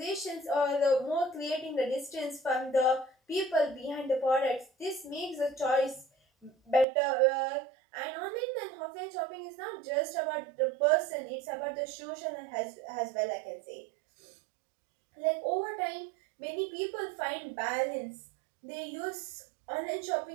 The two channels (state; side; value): drops out; left; at 6.9 s